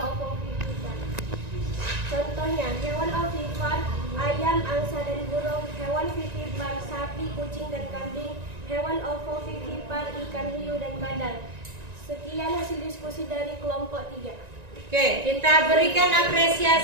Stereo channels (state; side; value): late; left; 1.9 ms